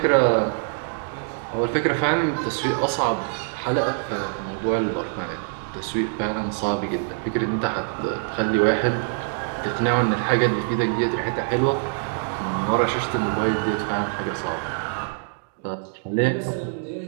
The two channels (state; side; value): silent; left; digital silence